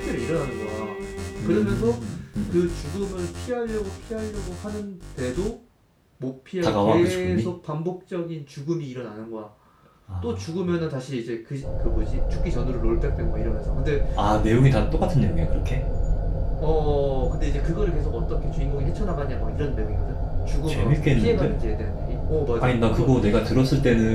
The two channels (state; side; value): identical; both; correlation 1.00